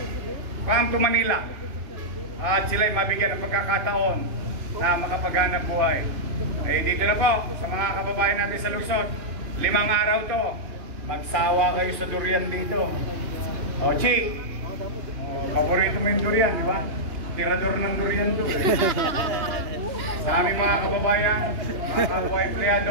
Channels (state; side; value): late; left; 2.9 ms